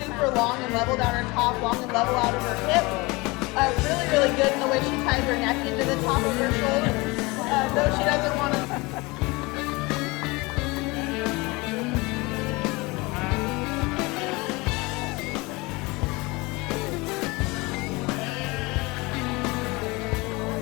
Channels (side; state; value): right; quieter; 24.4 dB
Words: long and level down her top, long and level out of her hip. Really, really good in the way she ties her neck into the top of her shoulder. Though she doesn't want to.